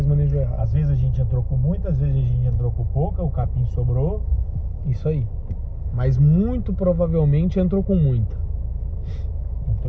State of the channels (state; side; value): identical; both; correlation 1.00